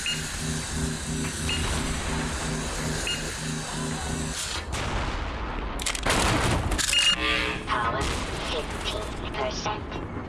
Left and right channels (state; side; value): identical; both; correlation 1.00